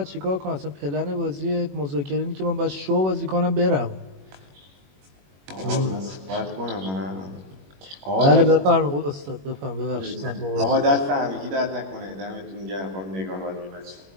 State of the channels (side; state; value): left; late; 21 ms